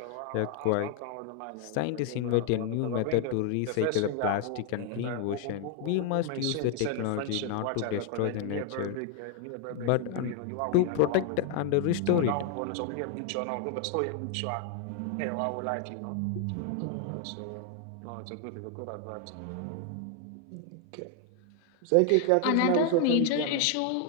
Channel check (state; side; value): different; both; correlation 0.00